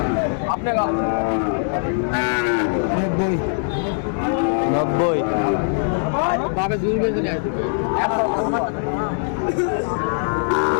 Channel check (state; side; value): silent; right; digital silence